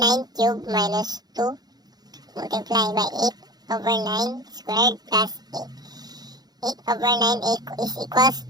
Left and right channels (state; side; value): late; left; 0.19 ms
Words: cubed minus 2 multiplied by 8 over 9 squared plus 8. 8 over 9 is equals